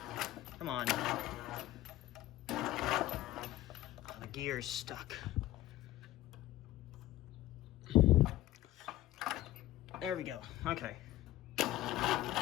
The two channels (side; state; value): right; quieter; 15.2 dB